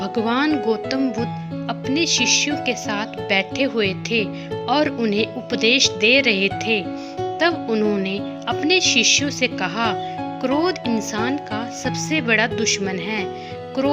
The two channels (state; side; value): identical; both; correlation 1.00